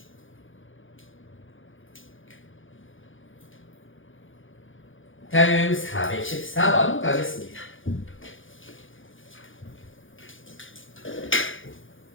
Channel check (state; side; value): late; right; 0.58 ms